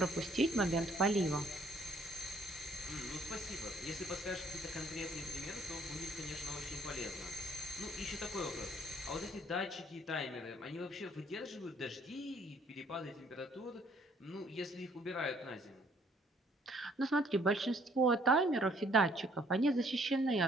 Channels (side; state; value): both; normal; correlation 0.63